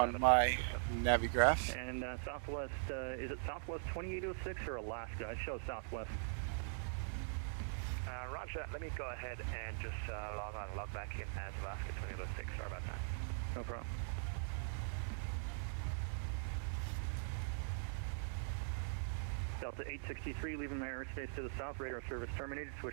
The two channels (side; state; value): left; silent; digital silence